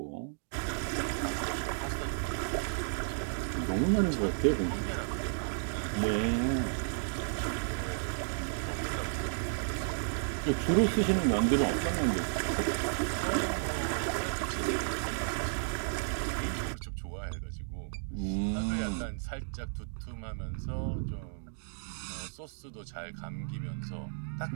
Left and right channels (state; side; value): silent; left; digital silence